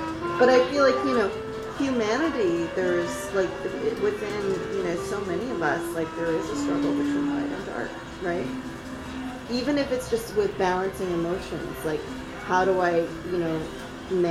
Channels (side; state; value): both; identical; correlation 1.00